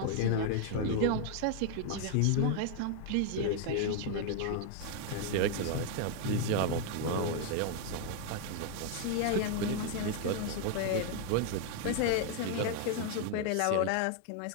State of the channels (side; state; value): both; different; correlation 0.00